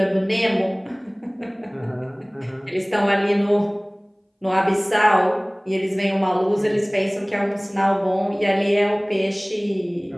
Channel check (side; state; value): both; identical; correlation 1.00